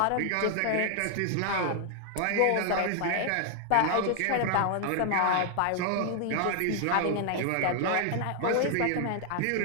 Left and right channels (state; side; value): different; both; correlation 0.00